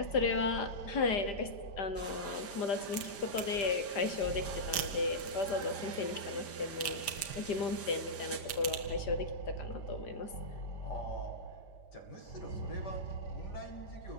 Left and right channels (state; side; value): late; right; 5.0 ms